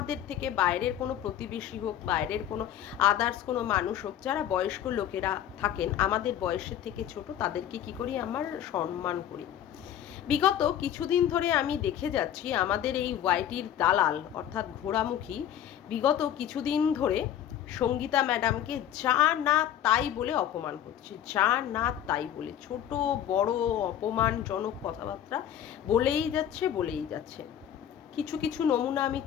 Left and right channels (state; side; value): quieter; right; 10.5 dB